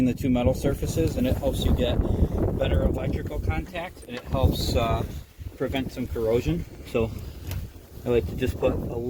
the two metal surfaces, and it helps you get better electrical contact, and it helps prevent some corrosion. So I like to just put a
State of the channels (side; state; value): both; identical; correlation 1.00